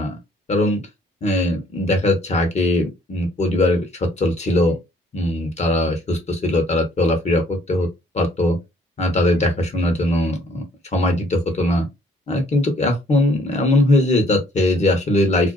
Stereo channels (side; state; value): both; normal; correlation 0.62